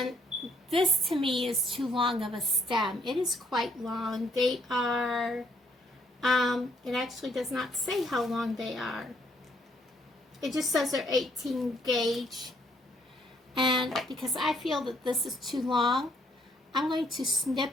this to me is too long of a stem. It is quite long. They are, it actually does not say how long they are. It just says they're 18 gauge. And because I feel that this is too long, I'm going to snip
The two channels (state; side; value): normal; both; correlation 0.68